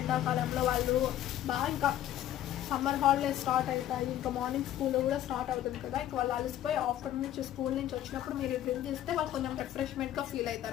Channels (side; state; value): right; quieter; 12.2 dB